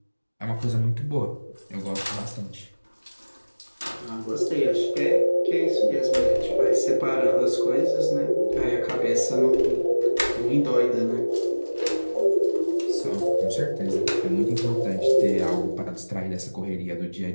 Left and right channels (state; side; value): inverted; both; correlation -1.00